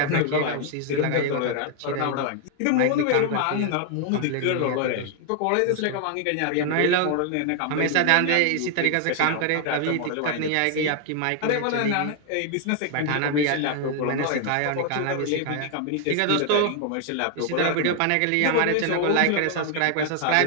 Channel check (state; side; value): different; both; correlation 0.00